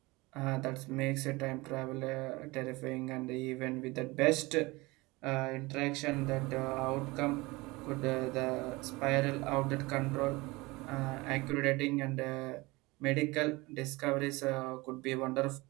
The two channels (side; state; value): left; quieter; 22.8 dB